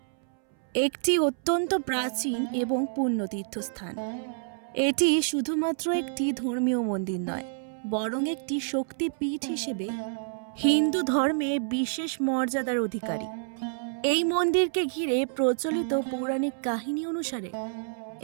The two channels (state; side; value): silent; left; 59 dB below the other